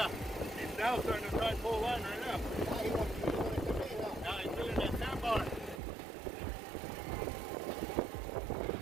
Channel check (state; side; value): drops out; left; at 5.8 s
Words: He's now starting to try and pull line right now. Now he wants to come in, huh? Now he's feeling that sandbar.